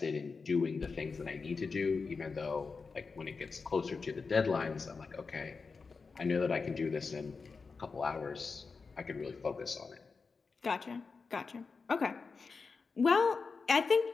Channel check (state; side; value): quieter; right; 4.7 dB